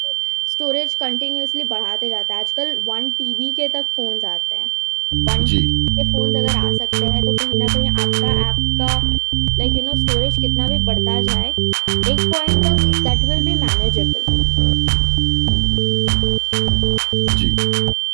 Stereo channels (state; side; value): silent; left; digital silence